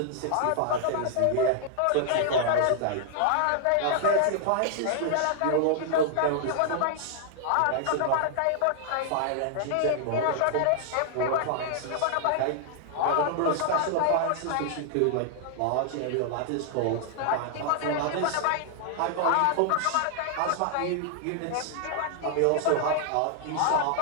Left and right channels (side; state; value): both; different; correlation -0.01